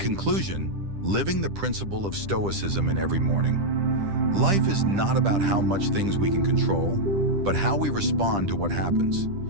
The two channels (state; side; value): late; left; 10 ms